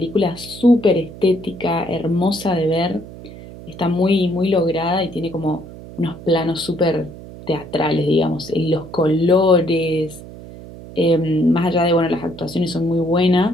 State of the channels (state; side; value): noise; right; hum, 15 dB below the sound